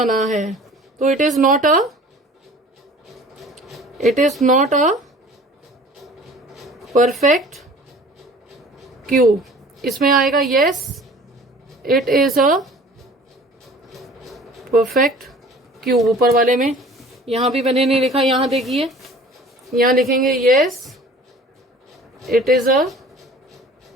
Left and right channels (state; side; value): normal; both; correlation 0.46